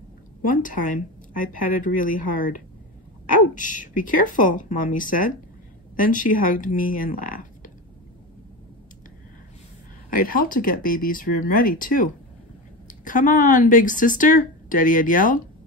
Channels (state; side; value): normal; both; correlation 0.23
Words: One time, I patted really hard. Ouch! Be careful, Mommy said. Then she hugged me and laughed. I'd helped to get baby's room ready, too. Come on, big sister, Daddy had yelled.